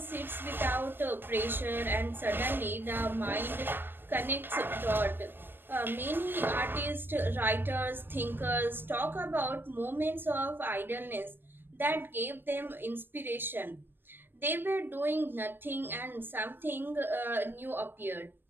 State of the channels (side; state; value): left; late; 0.097 ms